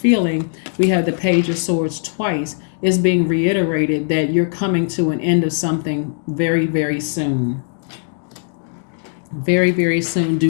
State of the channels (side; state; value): right; silent; 67 dB below the other